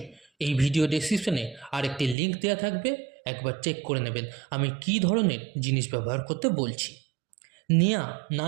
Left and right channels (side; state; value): left; drops out; at 2.1 s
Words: এই ভিডিও ডেসক্রিপশনে আরেকটি লিঙ্ক দেওয়া থাকবে, একবার চেক করে নেবেন আমি কী ধরনের জিনিস ব্যবহার করতে বলছি। নেয়া না